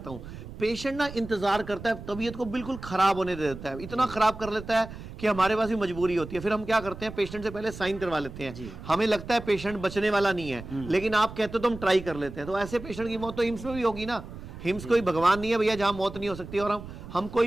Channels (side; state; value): right; noise; rumble, 13 dB below the sound